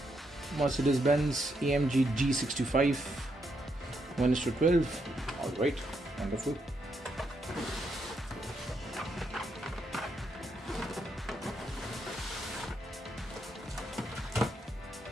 Mercedes-Benz AMG G65 1:12. Alright, wonderful.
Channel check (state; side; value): normal; both; correlation 0.79